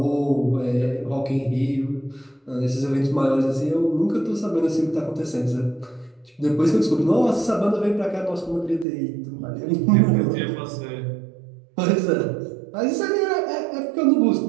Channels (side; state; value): left; drops out; at 8.8 s